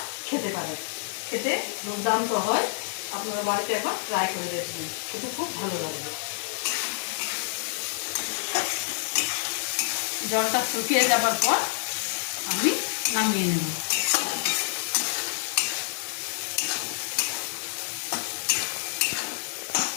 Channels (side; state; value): right; silent; digital silence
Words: খেতে পারেন। খেতে দুর্দান্ত হয়। আপনারা বাড়িতে একবার ট্রাই করে দেখবেন, খেতে খুব ভালো লাগবে। জলটা শুকিয়ে যাবার পর আমি নামিয়ে নেব।